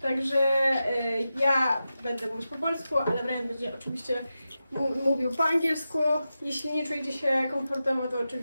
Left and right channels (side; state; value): both; inverted; correlation -0.91